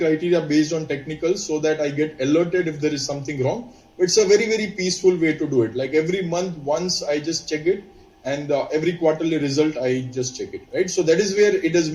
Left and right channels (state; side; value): identical; both; correlation 1.00